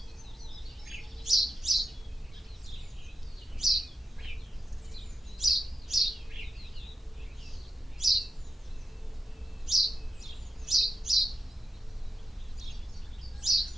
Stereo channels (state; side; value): normal; both; correlation 0.88